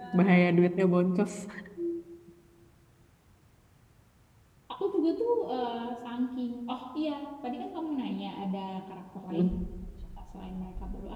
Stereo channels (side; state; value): both; identical; correlation 1.00